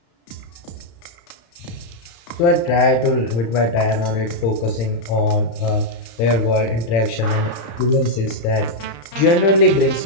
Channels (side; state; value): right; late; 35 ms